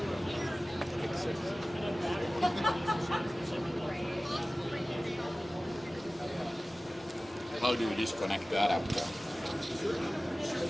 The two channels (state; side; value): normal; both; correlation 0.97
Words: How do you disconnect that after?